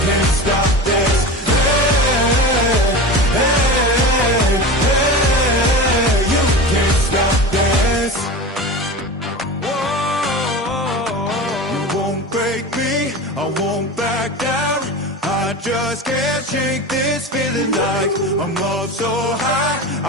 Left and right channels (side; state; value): both; normal; correlation 0.29